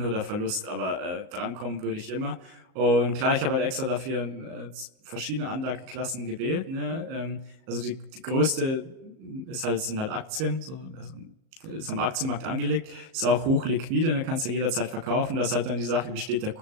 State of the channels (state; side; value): late; left; 38 ms